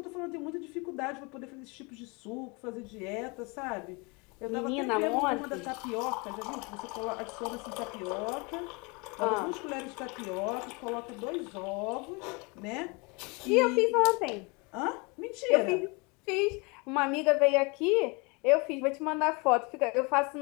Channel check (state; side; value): quieter; right; 29.3 dB